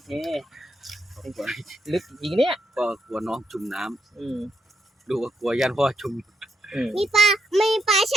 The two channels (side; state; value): both; normal; correlation 0.80